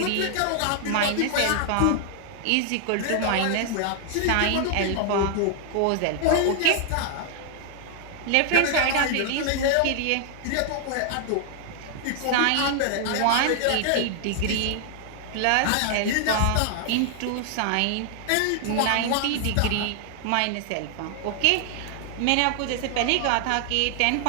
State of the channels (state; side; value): different; both; correlation 0.00